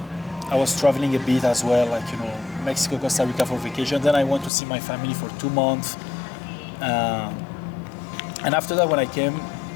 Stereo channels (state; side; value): drops out; right; at 4.5 s